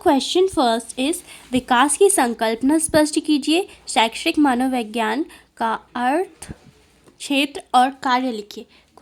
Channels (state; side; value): identical; both; correlation 1.00